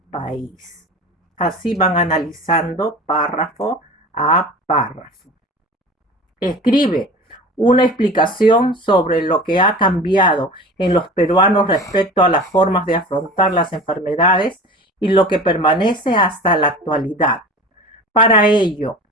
país. Así van analizando párrafo a párrafo. Escribe una explicación sobre lo que ha cambiado en los peruanos respecto a las formas de afrontar las enfermedades y lo que permanece hasta la actualidad. Para ello,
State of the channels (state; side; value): normal; both; correlation 0.37